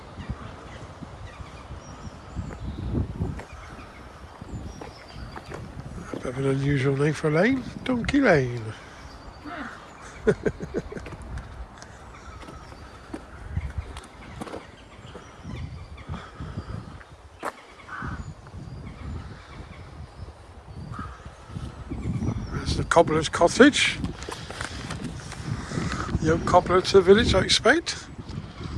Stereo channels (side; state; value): both; identical; correlation 1.00